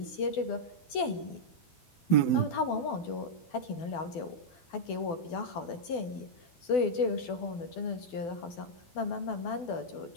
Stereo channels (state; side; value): late; right; 12 ms